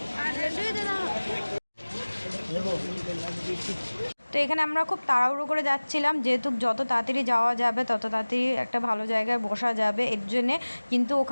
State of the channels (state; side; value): inverted; both; correlation -1.00